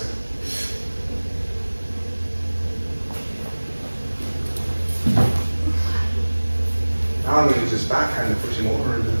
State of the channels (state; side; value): inverted; both; correlation -1.00